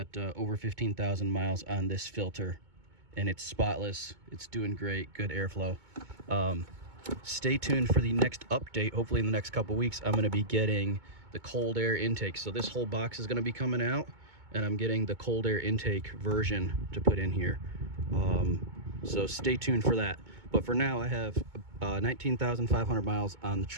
over 15,000 miles on this filter, and it's spotless. It's doing great, good airflow. Stay tuned for the next update. Hopefully in the next couple weeks, I'm gonna be getting the cold air intake. So this whole box is gonna be coming out, and I'm getting the cold air intake version to put in here. So stay tuned for that. But for now, I have 19,500 miles on the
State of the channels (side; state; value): left; late; 2.2 ms